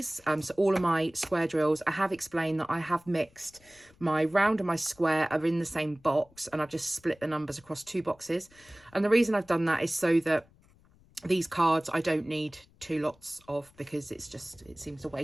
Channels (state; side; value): noise; left; rumble, 29 dB below the sound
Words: So all of my square drills, I have explained that I have mixed my round and my square are in the same box, and I've just split the numbers across 2 boxes. And the reason I've done that is so that these cards I don't need 2 lots of, because it seems a